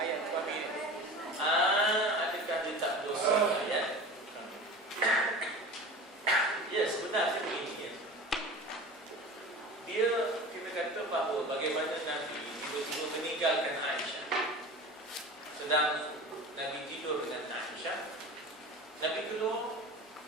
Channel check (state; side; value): normal; both; correlation 0.35